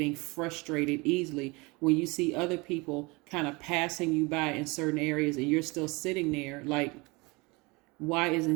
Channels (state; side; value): quieter; left; 25.8 dB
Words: frustrated easily when you see other people kind of passing you by in certain areas and you're still sitting there like, why